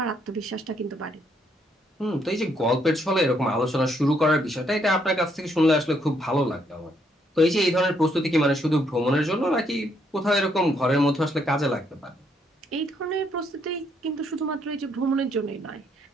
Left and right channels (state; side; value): normal; both; correlation 0.72